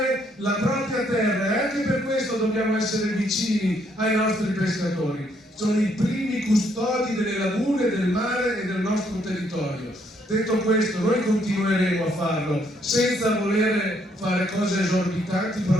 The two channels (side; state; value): both; normal; correlation 0.70